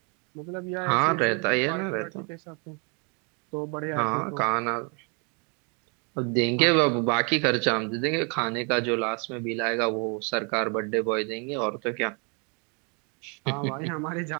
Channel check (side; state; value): left; quieter; 35.0 dB